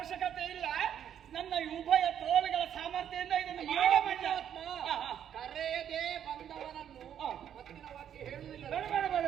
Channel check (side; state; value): left; quieter; 9.5 dB